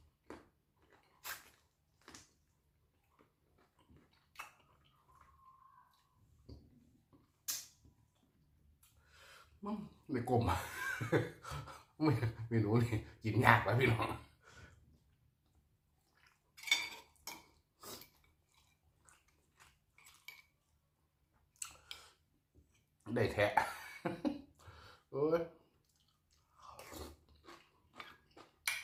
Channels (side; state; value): both; identical; correlation 1.00